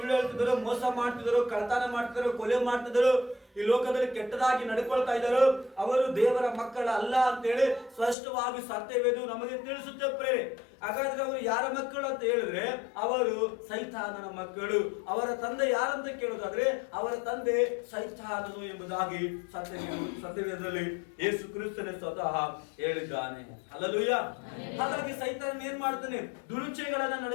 ಹೇಳ್ತಿದ್ರು, ಮೋಸ ಮಾಡ್ತಿದ್ರು, ಕಳ್ತನ ಮಾಡ್ತಿದ್ರು, ಕೊಲೆ ಮಾಡ್ತಿದ್ರು, ಈ ಲೋಕದಲ್ಲಿ ಕೆಟ್ಟದಾಗಿ ನಡ್ಕೊಳ್ತಾ ಇದ್ದಾರೆ, ಅವರು ದೇವರ ಮಕ್ಕಳ ಅಲ್ಲ ಅಂತೇಳಿ ಸ್ಪಷ್ಟವಾಗಿ ಸತ್ಯವೇದು ನಮಗೆ ತಿಳಿಸುತ್ತೆ ಪ್ರೇರೆ. ಹಾಗಾದ್ರೆ ಅವರು ಯಾರ ಮಕ್ಕಳು ಅಂತ ಹೇಳಿದ್ರೆ ಅವರು ಸೈತಾನನ ಮಕ್ಕಳು. ಅವರ ತಂದೆ ಯಾರಂತ ಕೇಳೋದಾದ್ರೆ ಅವರ ತಂದೆ ಸೈತಾನನು ಎಂಬುದಾಗಿ ಸತ್ಯವೇದದಲ್ಲಿ ಯೇಸು ಕ್ರಿಸ್ತನೇ ಸ್ವತಃ ಹೇಳಿದ್ದಾನೆ. ಹಲ್ಲೆಲೂಯಾ. ಹಾಗಾಗಿ ಸೈತಾನ ಏನ್ ಮಾಡ್ತಾನೆ? ದುರುಚೆಗಳನ್ನ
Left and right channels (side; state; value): right; drops out; at 8.2 s